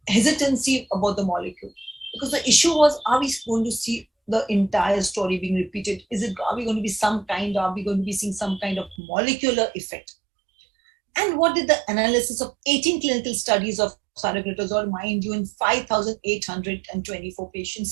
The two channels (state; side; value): drops out; left; at 9.0 s